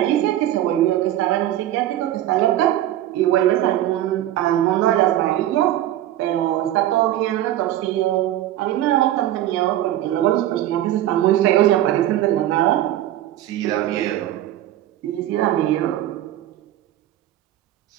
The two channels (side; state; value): left; quieter; 13.2 dB